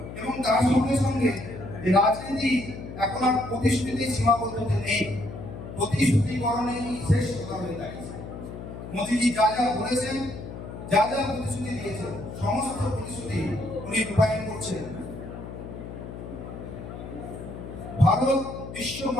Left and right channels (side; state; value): left; noise; hum, 10 dB below the sound